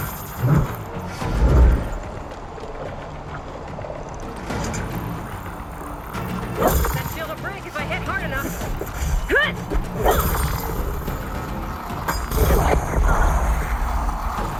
That shield will break if I hit hard enough.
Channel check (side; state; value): both; identical; correlation 1.00